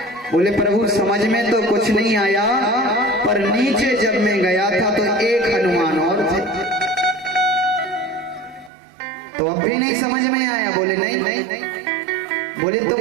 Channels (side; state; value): left; drops out; at 8.7 s